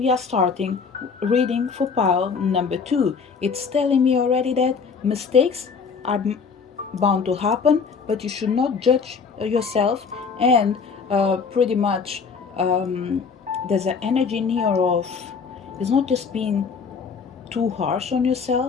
are starting reading for pile number two. It's telling me already that mistakes are bound to happen, but you should not judge yourself. And pretty much there's an energy in here of it's not just being too harsh on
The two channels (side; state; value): right; quieter; 5.5 dB